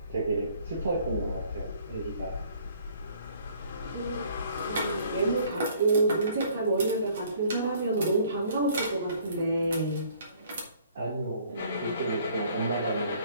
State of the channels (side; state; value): both; inverted; correlation -0.58